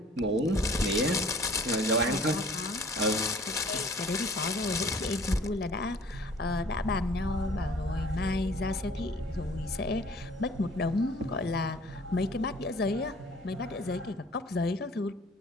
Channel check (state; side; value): normal; both; correlation 0.51